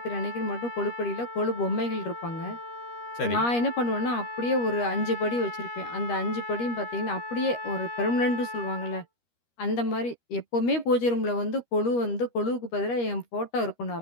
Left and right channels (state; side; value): late; right; 13 ms